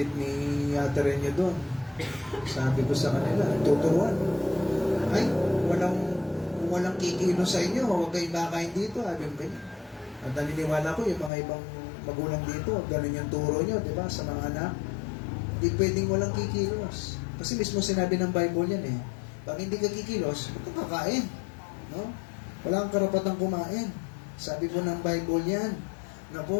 ni Ate Renyo doon, sabi ko sa kanila, tuturuan. Ay, walang kikilo sa inyo, huwag kayong kakain dito. Sabi ko, at naniniwala ko, yung mga ibang magulang dito, ganun yung turo nyo, di ba, sa mga anak. Hindi pwedeng walang kikilos. Kasi mismo sinabi ng Bible yan pag hindi ka kikilos, huwag kang kakain. No? Wala kang karapatang kumain. Sabi po ng Bible yan. Na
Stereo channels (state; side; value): drops out; right; at 11.3 s